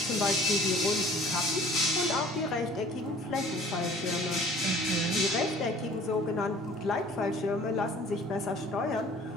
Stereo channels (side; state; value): both; normal; correlation 0.50